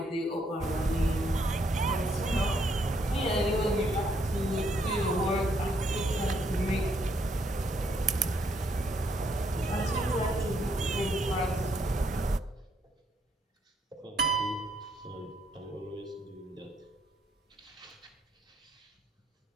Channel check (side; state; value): both; normal; correlation 0.72